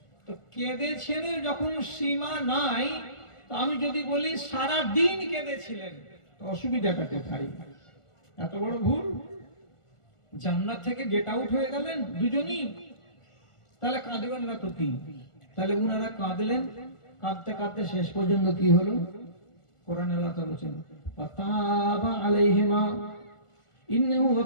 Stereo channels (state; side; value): late; right; 1.4 ms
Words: তো কেঁদেছেন যখন সীমা নাই, তো আমি যদি বলি সারা দিন কেঁদেছিলেন, অসুবিধাটা কোথায়? এত বড় ভুল। জান্নাত থেকে গেট আউট হয়ে গেলেন দুজনই, তাহলে কাঁদবেন না তো কি? তাহলে উনারা কাঁদলেন, কাঁদতে কাঁদতে শেষ পর্যন্ত কি হলো? কোরআন আল্লাহ তাআলা বলেছেন ফাতাবা আলাইহিমা ইন্নাহু